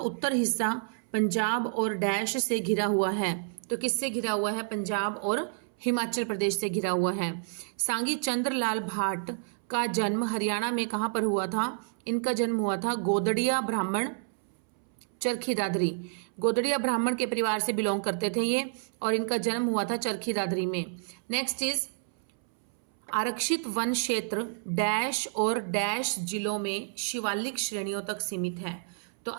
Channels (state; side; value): silent; left; 58 dB below the other